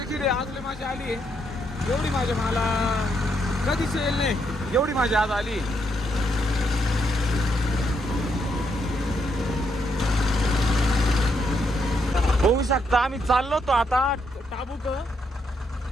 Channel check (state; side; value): normal; both; correlation 0.77